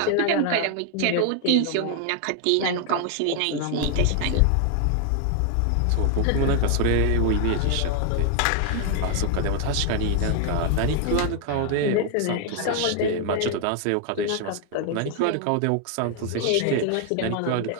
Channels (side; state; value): both; different; correlation 0.00